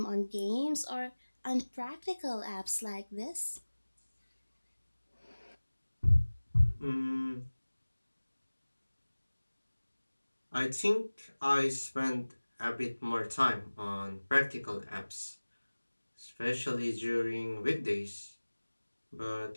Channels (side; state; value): both; inverted; correlation -1.00